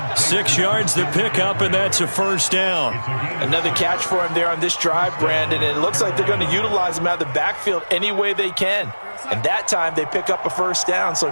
6 yards the pickup, and that's a first down. Another catch for him there on this drive, Brandon, and it looks like they're going to utilize him out of the backfield any way they can. And that time they pick up a first down.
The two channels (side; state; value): both; inverted; correlation -1.00